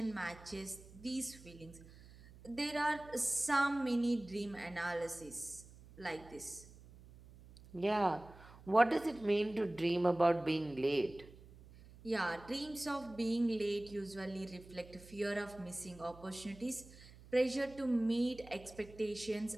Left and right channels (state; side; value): noise; right; hum, 20 dB below the sound